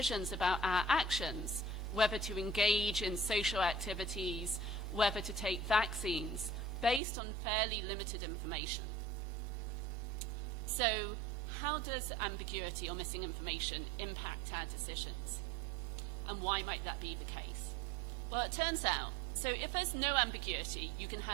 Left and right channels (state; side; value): drops out; left; at 7.0 s